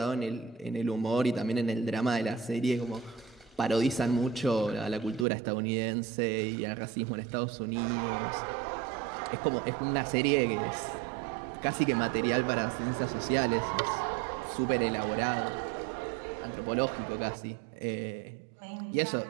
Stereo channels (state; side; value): drops out; left; at 5.2 s